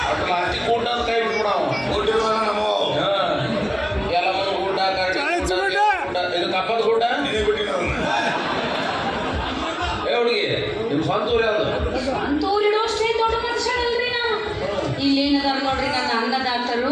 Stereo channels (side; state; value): both; identical; correlation 1.00